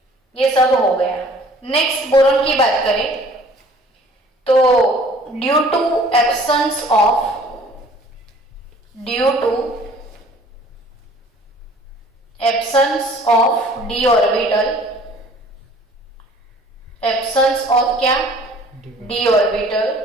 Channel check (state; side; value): normal; both; correlation 0.52